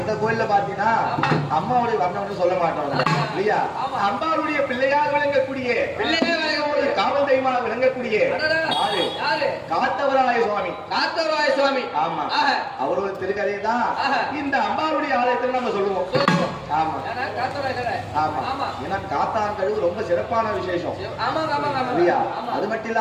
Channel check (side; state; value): both; identical; correlation 1.00